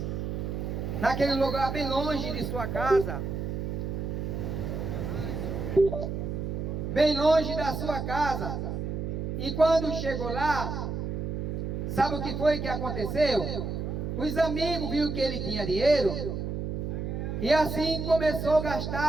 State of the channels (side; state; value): right; noise; hum, 3 dB below the sound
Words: naquele lugar bem longe de sua casa, bem longe da sua casa. E quando chegou lá, sabe o que foi que aconteceu? Os amigos viram que ele tinha dinheiro e assim começou a